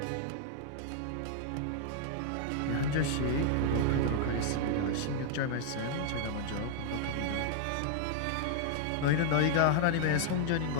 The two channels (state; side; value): different; both; correlation 0.00